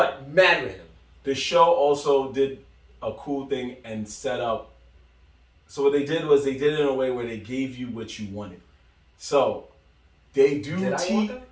mad random. The show also did a cool thing and set up. So what they did was they did it in a way where they gave you what you wanted. So they do. Did I want that?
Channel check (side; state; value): both; identical; correlation 1.00